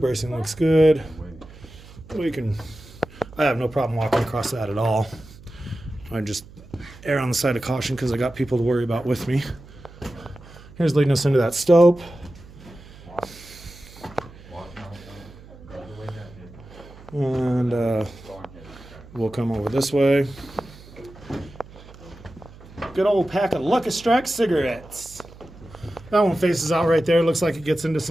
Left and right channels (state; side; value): noise; right; hum, 20 dB below the sound